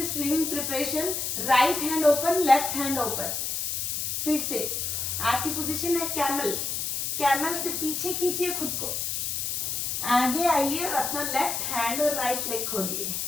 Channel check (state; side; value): noise; left; hiss, 1 dB below the sound